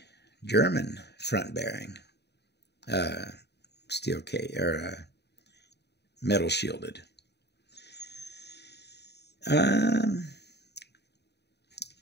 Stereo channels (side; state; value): right; late; 0.49 ms